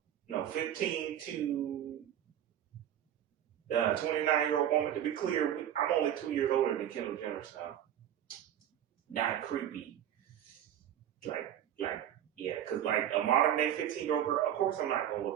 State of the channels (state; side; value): quieter; left; 10.7 dB